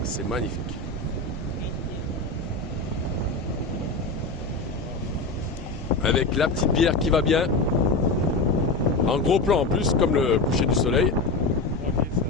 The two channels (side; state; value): right; quieter; 3.3 dB